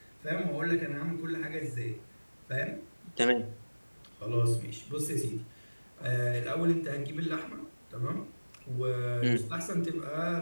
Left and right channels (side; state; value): both; inverted; correlation -1.00